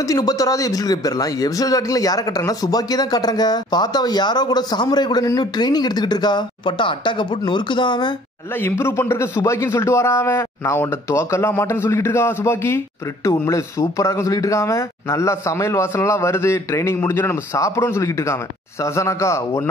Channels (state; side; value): normal; both; correlation 0.55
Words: எபிசோட் போயிடலாம். எபிசோட் ஸ்டார்டிங்ல யாரை கட்டுறாங்கன்னா சுபாக்கியை தான் காட்டுறாங்க. பார்த்தா அவ யாரோ கூட சாமுராய் கூட நின்று ட்ரைனிங் எடுத்துக்கிட்டு இருக்கா. பட்டா அட்டாக்க போட்டு நொறுக்குதான் அவன். நல்லா இம்ப்ரூவ் பண்றதுக்கு சுபாக்கின்னு சொல்லிட்டு வரான் அவன். நான் உன்ட தோக்கெல்லாம் மாட்டேன்னு சொல்லிட்டு இருக்கா சுபாக்கி. பிரிட்டு உண்மையிலே சூப்பரா இருக்கும் சொல்லிட்டு இருக்கான். நல்லா சமையல் வாசனை எல்லாம் வருது. ட்ரைனிங் முடிஞ்சோன்னு நம்ம சாப்பிடுவோம்னு சொல்லிட்டு இருக்காங்க. சசனாக்கா